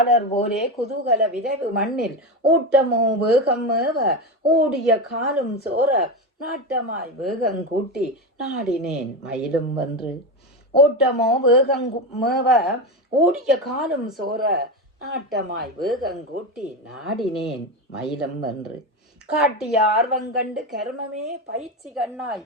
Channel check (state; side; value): normal; both; correlation 0.17